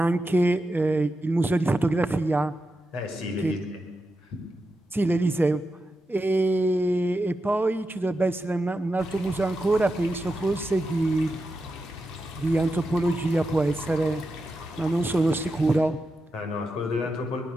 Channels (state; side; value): normal; both; correlation 0.88